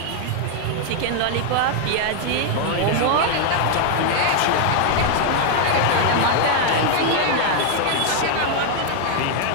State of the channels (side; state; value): both; different; correlation 0.00